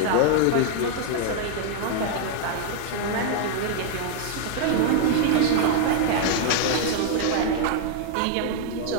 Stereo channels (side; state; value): both; different; correlation 0.00